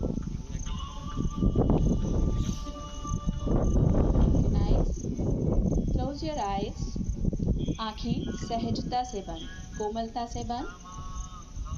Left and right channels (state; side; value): identical; both; correlation 1.00